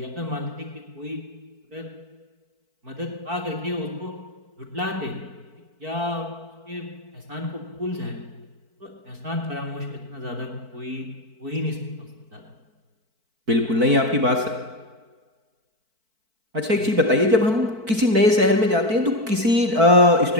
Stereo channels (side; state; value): left; late; 4.5 ms